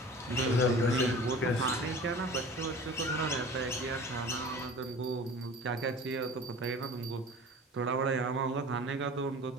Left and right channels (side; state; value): both; normal; correlation 0.41